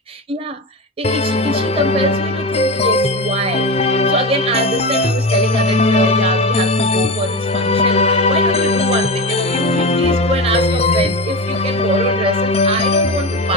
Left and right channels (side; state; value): both; normal; correlation 0.21